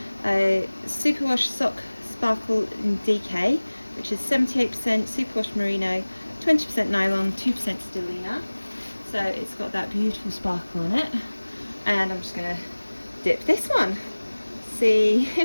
a Superwash Sock Sparkle DK, which is 78% Superwash Merino, 20% nylon, 2% Stellina. So it's got that beautiful sparkle on it. And I'm just going to dip this one. See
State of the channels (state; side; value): inverted; both; correlation -1.00